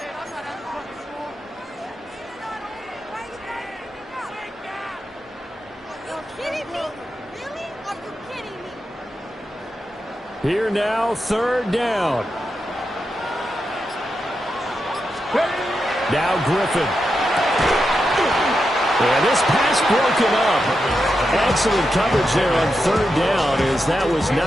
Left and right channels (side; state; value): both; normal; correlation 0.87